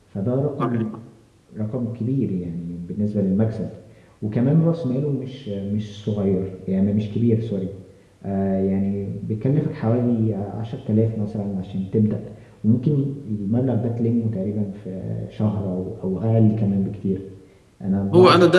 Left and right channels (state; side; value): identical; both; correlation 1.00